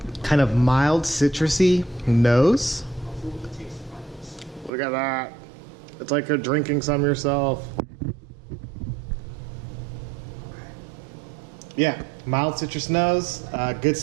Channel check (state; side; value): drops out; left; at 4.7 s